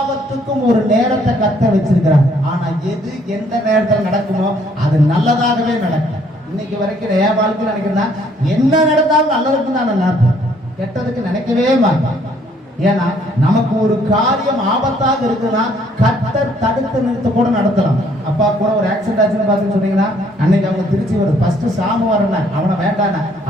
ஒரு நேரத்தை கர்த்தர் வச்சிருக்கிறார். ஆனா எது எந்த நேரத்தில் நடக்குமோ அது நல்லதாகவே நடக்கும். இன்னைக்கு வரைக்கும் என் வாழ்க்கை நினைக்கிறேன்னா, என்ன நடந்தாலும் நல்லதுக்கு தான் நான் நினைப்பேன், கெட்டதுக்கு நினைக்கவே மாட்டேன். ஏன்னா நமக்கு ஒரு காரியம் ஆபத்தாக இருக்குன்னா கர்த்தர் தடுத்து நிறுத்த கூட நடத்தலாம். அப்பா கூட ஒரு ஆக்சிடென்ட் ஆச்சுன்னு பார்த்து சொன்னீங்கன்னா, அன்னைக்கு அவங்க திருச்சி வரும், ஃபர்ஸ்ட் சாமி வரேன், அவனை வேண்டாண்ண,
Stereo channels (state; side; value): normal; both; correlation 0.64